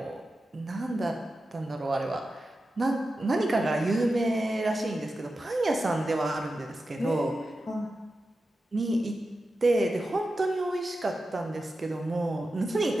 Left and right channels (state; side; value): normal; both; correlation 0.92